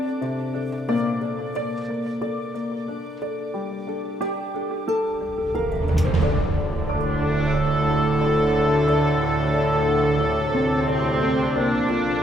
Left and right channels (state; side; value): normal; both; correlation 0.75